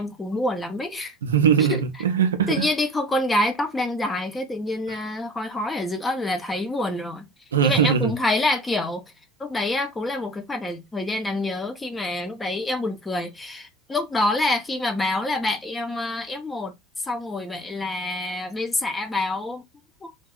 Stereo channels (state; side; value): normal; both; correlation 0.42